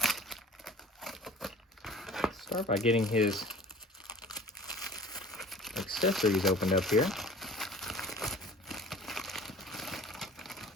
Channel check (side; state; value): both; normal; correlation 0.46